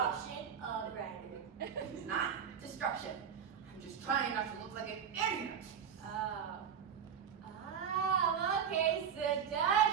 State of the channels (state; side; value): quieter; left; 7.8 dB